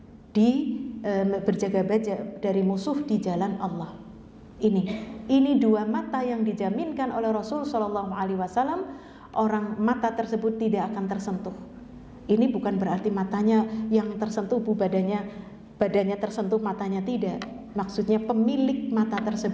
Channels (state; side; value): identical; both; correlation 1.00